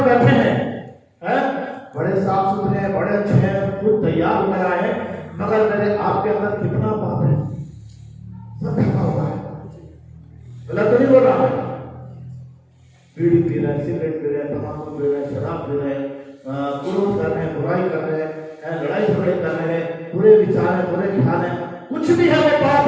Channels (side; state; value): both; identical; correlation 1.00